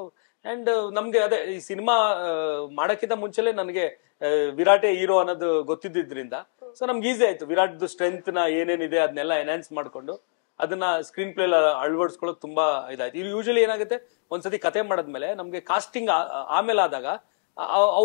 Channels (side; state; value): right; silent; digital silence